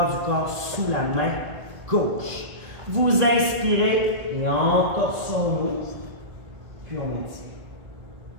du corps sous la main gauche. Vous inspirez et entorse on ouvre, puis on maintient.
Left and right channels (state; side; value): late; left; 2.0 ms